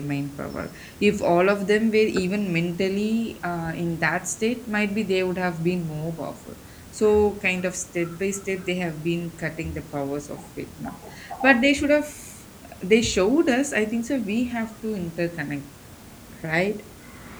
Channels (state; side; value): identical; both; correlation 1.00